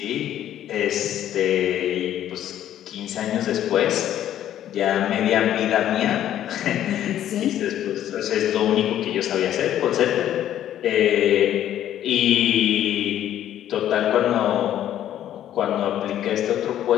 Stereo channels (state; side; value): quieter; right; 11.5 dB